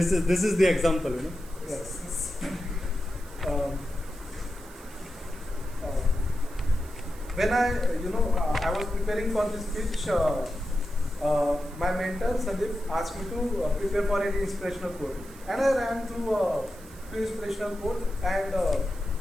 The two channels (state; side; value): noise; right; hiss, 22 dB below the sound